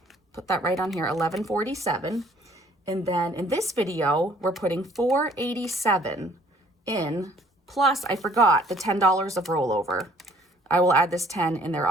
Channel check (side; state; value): both; normal; correlation 0.58